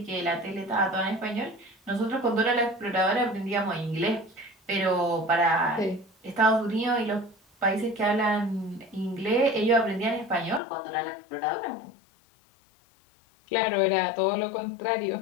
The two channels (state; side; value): drops out; right; at 10.6 s